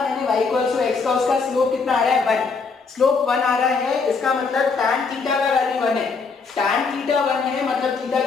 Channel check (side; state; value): right; quieter; 4.8 dB